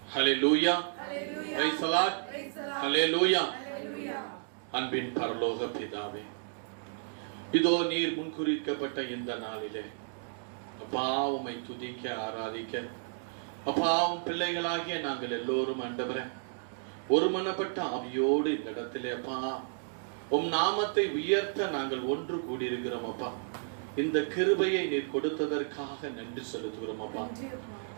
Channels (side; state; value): left; silent; digital silence